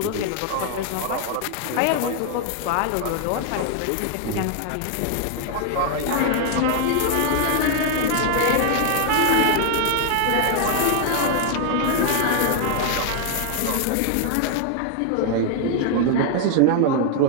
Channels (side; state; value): both; different; correlation 0.00